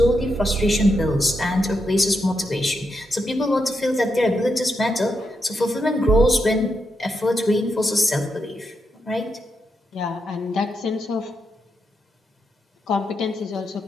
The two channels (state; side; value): normal; both; correlation 0.83